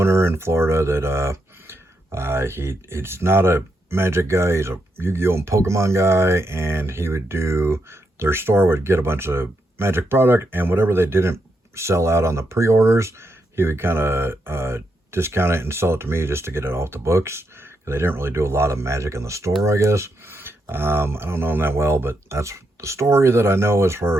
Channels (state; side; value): normal; both; correlation 0.82